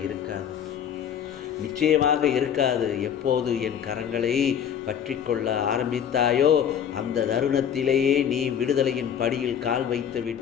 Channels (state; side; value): quieter; right; 8.7 dB